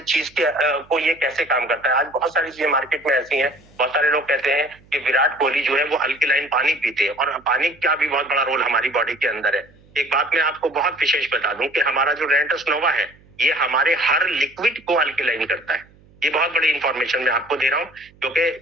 चीज के को ये कैसे काम करता है। आज बहुत सारी चीजें मार्केट में ऐसी हैं, बहुत सारे लोग कहते हैं कि विराट कोहली जो है वो अल्कलाइन पानी पीते हैं, और पानी का भी बहुत बड़ा रोल हमारी बॉडी के अंदर है। एक बात मैं आपको बहुत विशेष बता दूं कि हमारा जो रेनेटस नोवा है ये हमारे हर लिक्विड को अल्कलाइन करता है। ये बहुत बड़ी इंफॉर्मेशन मैं आपको दे रहा हूँ, क्योंकि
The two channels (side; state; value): right; noise; hum, 28 dB below the sound